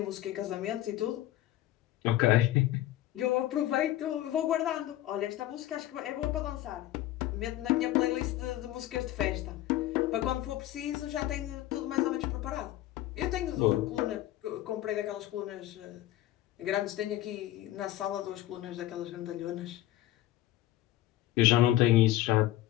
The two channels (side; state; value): right; quieter; 14.6 dB